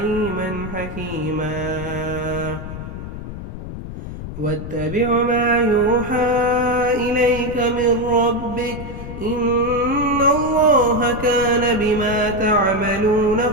حكيما. واتبع ما يوحى إليك من ربك إن الله كان بما تعملون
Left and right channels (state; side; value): noise; left; rumble, 9 dB below the sound